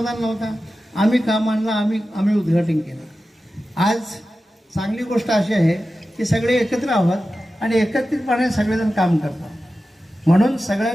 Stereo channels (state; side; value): normal; both; correlation 0.93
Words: नव्हता, आम्ही काम आणलं, आम्ही उद्घाटन केलं. आज चांगली गोष्ट अशी आहे की सगळे एकत्र आहोत आणि एकत्रितपणे सगळेजण काम करतात. म्हणून